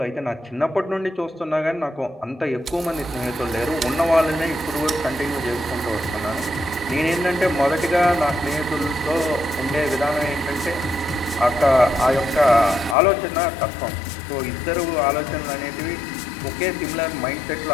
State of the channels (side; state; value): right; drops out; at 13.0 s